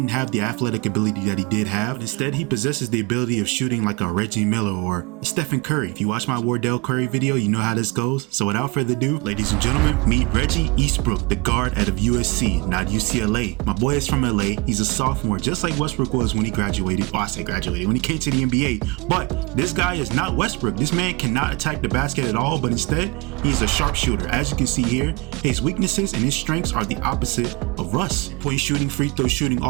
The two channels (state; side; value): quieter; left; 26.7 dB